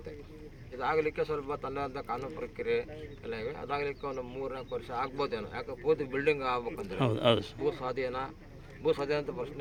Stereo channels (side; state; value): both; identical; correlation 1.00